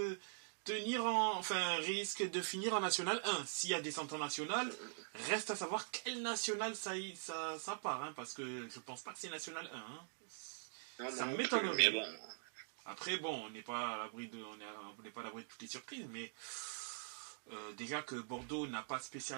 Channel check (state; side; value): silent; left; digital silence